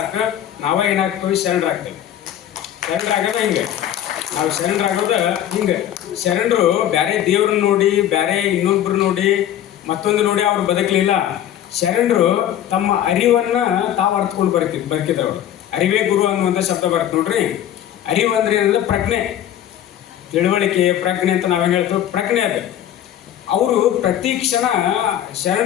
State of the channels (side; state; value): right; quieter; 11.2 dB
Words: ನಾವೇ ಏನಾಗ್ತೀವಿ, ಶರಣರಾಗ್ತೇವೆ. ಶರಣರಾಗೋದ ಹಿಂಗೆ, ನಾವು ಶರಣರಾಗೋದ ಹಿಂಗೆ. ಶರಣರು ಬೇರೆ ದೇವ್ರನ್ನ ನೋಡಿ, ಬೇರೆ ಇನ್ನೊಬ್ರು ನೋಡಿ, ಮತ್ತೊಂದು ನೋಡಿ ಅವ್ರು ಬದುಕಲಿಲ್ಲ. ಶರಣರು ತಮ್ಮ ಅರಿವನ್ನ ತಾವು ಅರ್ಥಕೊಂಡು ಬದುಕಿದವರು. ಅರಿವೇ ಗುರು ಅನ್ನುವಂಥ ಶಬ್ದ ಬರುತ್ತೆ ನೋಡ್ರಿ. ಅರಿವು ಅಂದ್ರೆ ಏನಂದ್ರೆ ಪ್ರಜ್ಞೆ, ತಿಳುವಳಿಕೆ, ಪ್ರಜ್ಞೆ ಅಂತ ನಾವೇನು ಹೇಳ್ತೇವೆ, ಪ್ರಜ್ಞೆ ಅದು. ಅವರು ಪ್ರತಿ ಕ್ಷಣ